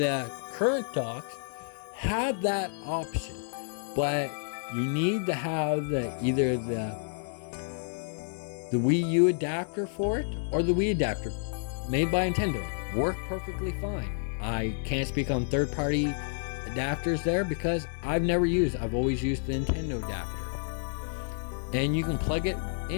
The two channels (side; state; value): right; silent; digital silence